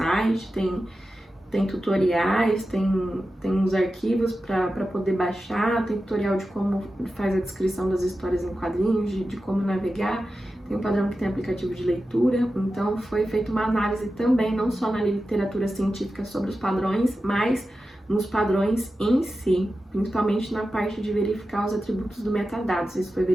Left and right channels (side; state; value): both; normal; correlation 0.92